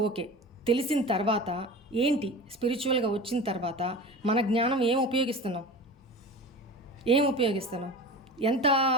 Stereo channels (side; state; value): both; normal; correlation 0.33